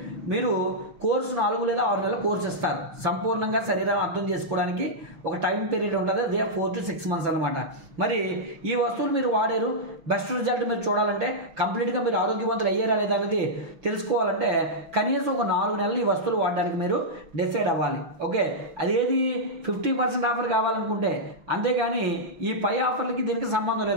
మీరు కోర్సు 4 లేదా 6 నెలల కోర్సు ఇస్తారు. సంపూర్ణంగా శరీరాన్ని అర్థం చేసుకోవడానికి ఒక టైం పీరియడ్ ఉంటుంది, అదే 4 to 6 months అనమాట. మరి ఈ వస్తువులు మీరు వాడారు, బెస్ట్ రిజల్ట్ మీరు చూడాలంటే, కంప్లీట్గా మీరు ఆరోగ్యవంతులు అయ్యారా లేదా అనేది తెలుసుకోవాలంటే కనీసం ఒక 4 నెలలు ఈ వస్తువులు వాడడానికి మీరు డిసైడ్ అవ్వాలి. ఓకే, అదేది 50% ఆఫర్ కావాలనుకుంటే, అంతేగాని ఈ పై ఆఫర్లకి దీనికి సంబంధం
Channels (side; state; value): left; late; 5.9 ms